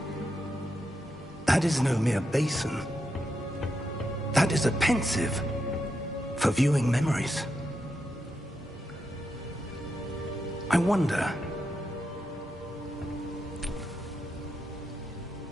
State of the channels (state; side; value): normal; both; correlation 0.85